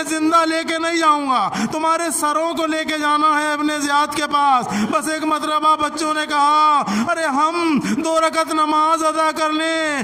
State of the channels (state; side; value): identical; both; correlation 1.00